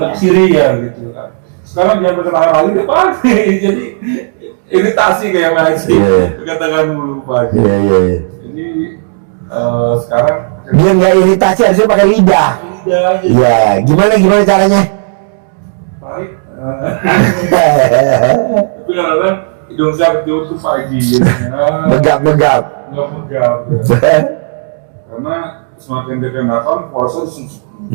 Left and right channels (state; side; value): silent; left; digital silence